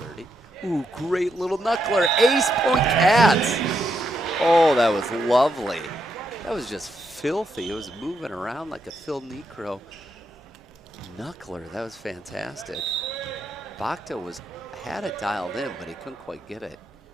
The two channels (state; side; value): normal; both; correlation 0.80